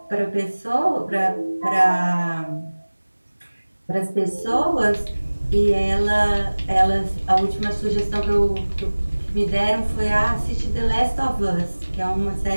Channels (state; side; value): inverted; both; correlation -1.00